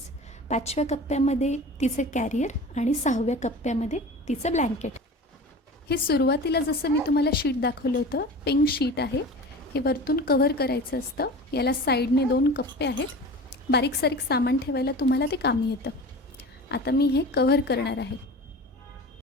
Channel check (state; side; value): normal; both; correlation 0.36